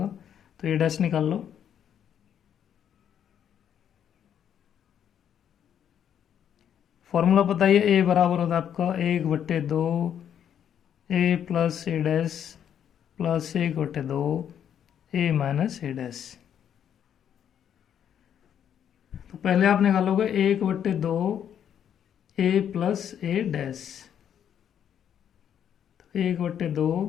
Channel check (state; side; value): quieter; right; 9.1 dB